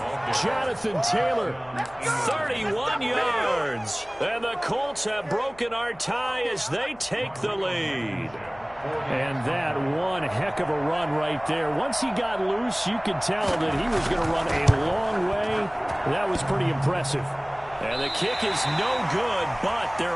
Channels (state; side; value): noise; left; hum, 24 dB below the sound